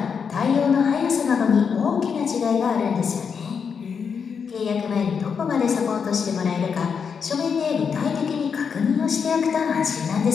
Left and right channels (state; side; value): quieter; right; 6.3 dB